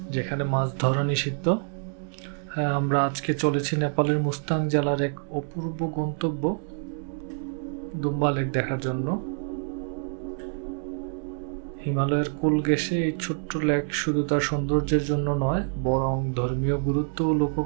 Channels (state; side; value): silent; left; 56 dB below the other